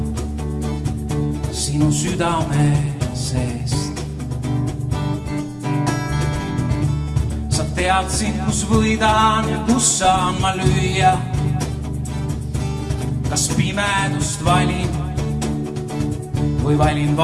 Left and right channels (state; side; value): identical; both; correlation 1.00